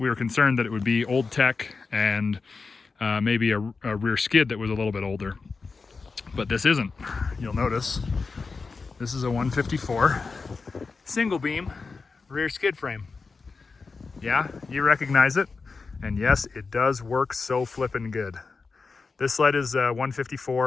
were concerned that it would be old tech and maybe a rear skid that was a little bit older. But this isn't. You'll notice this is a 154 single beam rear skid frame. Yeah, you recognize it. And yes, it does work so flippin' good. This sled is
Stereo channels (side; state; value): right; quieter; 4.5 dB